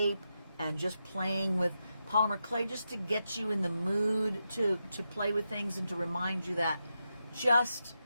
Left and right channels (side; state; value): both; inverted; correlation -0.87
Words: and just playing with polymer clay just to get you in the mood to play with things and to remind you that just